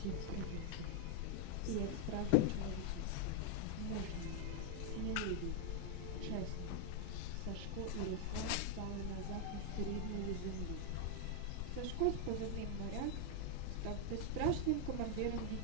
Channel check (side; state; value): both; different; correlation 0.00